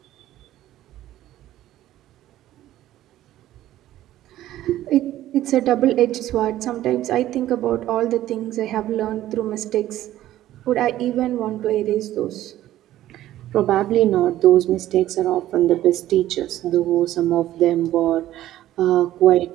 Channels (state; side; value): quieter; left; 13.8 dB